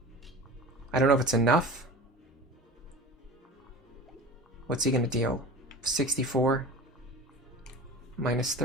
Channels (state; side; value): normal; both; correlation 0.35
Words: I don't know if it's enough. What's he gonna deal? 64? Minus